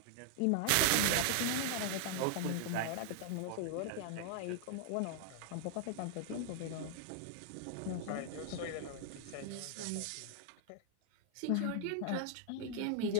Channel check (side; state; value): both; different; correlation 0.00